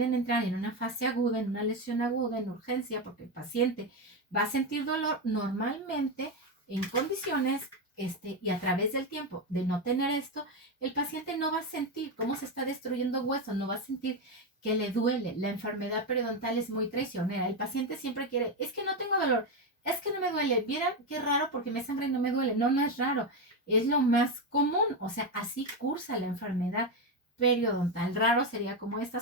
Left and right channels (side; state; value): both; normal; correlation 0.10